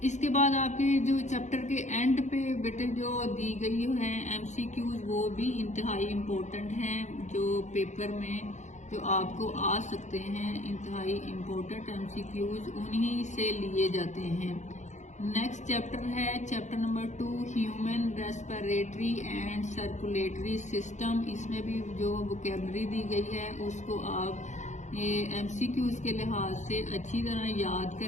इसके बाद आपके जो चैप्टर के एंड पे बेटे जो दी गई है एमसीक्यूज वो भी इंतहाई इम्पोर्टेंट हैं, जो पेपर में जो आपको आ सकते हैं। इंतहाई इम्पोर्टेंट एमसीक्यूज उन्हीं से लिए जाते हैं। नेक्स्ट चैप्टर है chapter number 2 human respiratory and circulatory system. इसमें भी जो वोकैबुलरी दी गई है उसको आप ये एमसीक्यूज के लिहाज से अच्छी तरह याद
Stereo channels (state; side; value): late; right; 0.34 ms